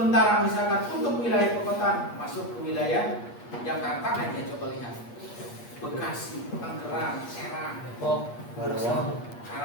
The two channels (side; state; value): right; late; 8.4 ms